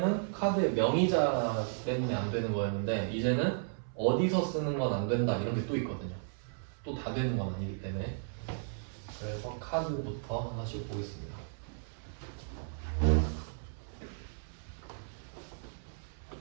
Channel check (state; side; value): silent; left; 55 dB below the other